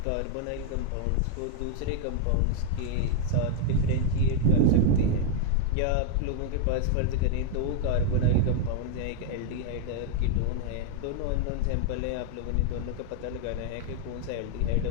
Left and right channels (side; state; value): both; different; correlation 0.00